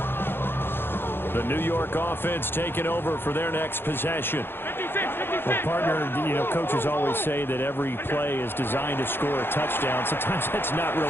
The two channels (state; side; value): late; right; 0.10 ms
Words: The New York offense taking over for their next possession. Well, partner, you know, coaches always say that every play is designed to score a touchdown. Sometimes that's not